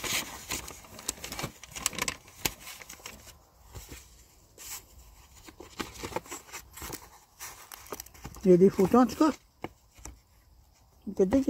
Il y a des photos en tout cas. Il y a quelqu'un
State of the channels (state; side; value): identical; both; correlation 1.00